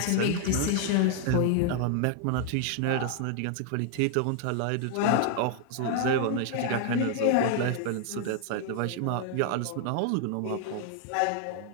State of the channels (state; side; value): different; both; correlation 0.00